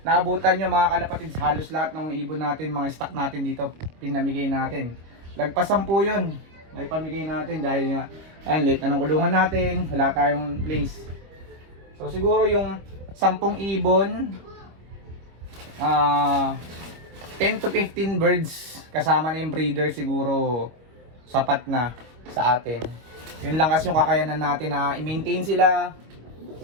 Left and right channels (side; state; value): left; late; 25 ms